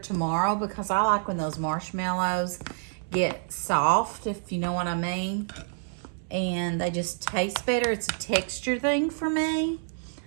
because I like when those marshmallows get soft, if you know what I mean. And they just taste better. It's a texture thing for me.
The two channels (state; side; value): silent; left; 59 dB below the other